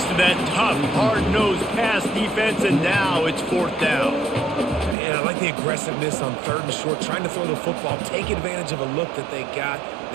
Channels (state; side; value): drops out; left; at 5.0 s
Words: to that tough, hard-nosed pass defense, and now it's fourth down. Man, I like the aggressiveness on third and short, trying to throw the football, take advantage of a look that they got.